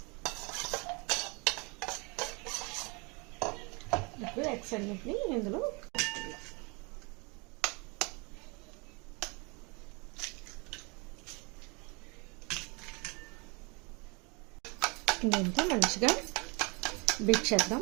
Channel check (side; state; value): left; quieter; 29.9 dB